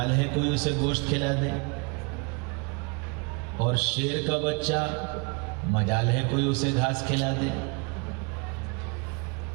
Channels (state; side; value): quieter; left; 31.7 dB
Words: ہے کوئی اسے گوشت کھلا دے، اور شیر کا بچہ مجال ہے کوئی اسے گھاس کھلا دے؟